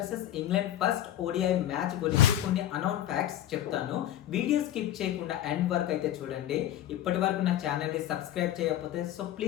England first ODI match గురించి కొన్ని unknown facts చెప్తాను. Video skip చేయకుండా ఎండ్ వరకు అయితే చూడండి. ఇప్పటి వరకు నా ఛానల్ని సబ్స్క్రైబ్ చేయకపోతే so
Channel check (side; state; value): right; quieter; 12.3 dB